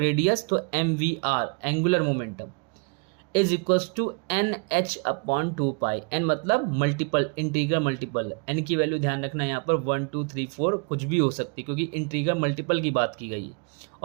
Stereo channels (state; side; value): quieter; left; 35.2 dB